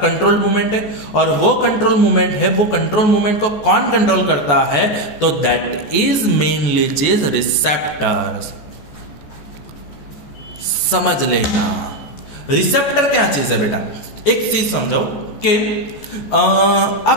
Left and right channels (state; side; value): late; right; 14 ms